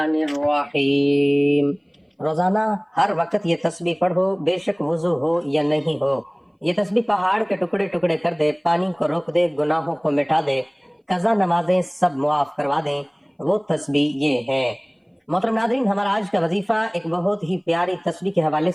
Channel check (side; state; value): both; identical; correlation 1.00